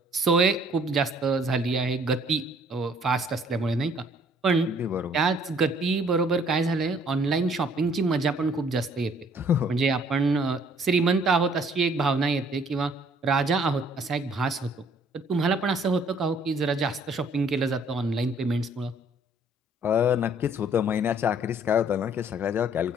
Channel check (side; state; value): both; normal; correlation 0.59